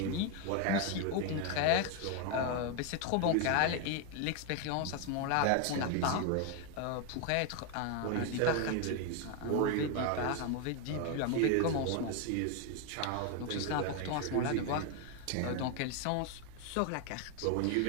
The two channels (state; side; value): different; both; correlation 0.01